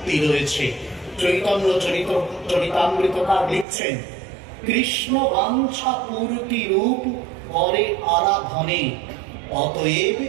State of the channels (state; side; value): drops out; left; at 3.7 s